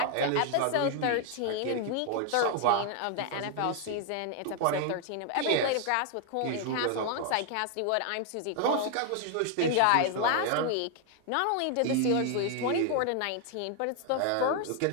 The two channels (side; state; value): both; different; correlation 0.00